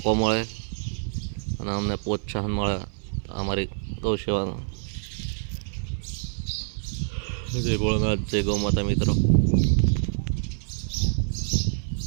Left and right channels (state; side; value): silent; left; 57 dB below the other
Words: મળે અને અમને પ્રોત્સાહન મળે અમારી ગૌસેવાનું. જય ભોળાનાથ, જય ગૌ માતા મિત્રો.